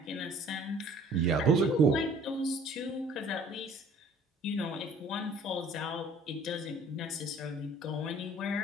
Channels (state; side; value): normal; both; correlation 0.53